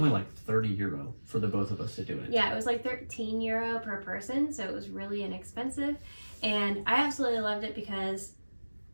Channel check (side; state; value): both; inverted; correlation -1.00